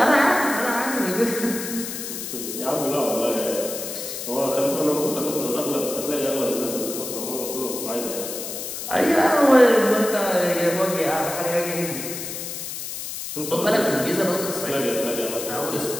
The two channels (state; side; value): noise; left; hiss, 7 dB below the sound